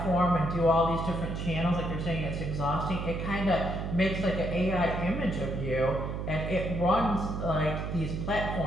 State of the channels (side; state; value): right; noise; hum, 4 dB below the sound